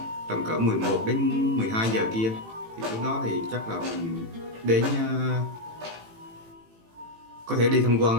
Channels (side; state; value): left; late; 18 ms